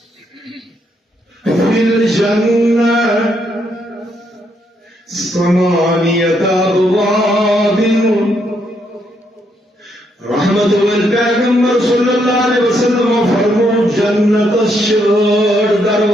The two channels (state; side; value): normal; both; correlation 0.75